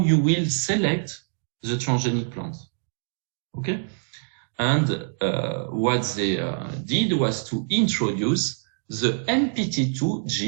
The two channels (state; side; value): silent; left; digital silence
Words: will select the transgenic plant. Okay? And what they did was to introduce the NPT2